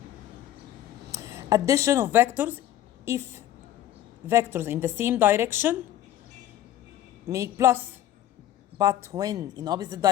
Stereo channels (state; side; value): quieter; right; 12.5 dB